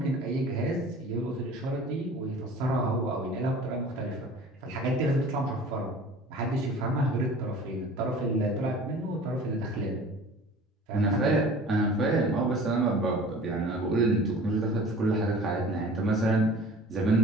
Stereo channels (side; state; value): both; normal; correlation 0.44